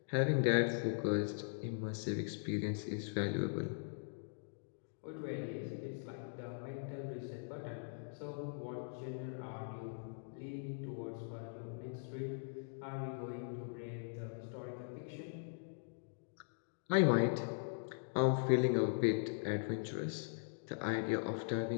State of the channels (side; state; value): right; silent; digital silence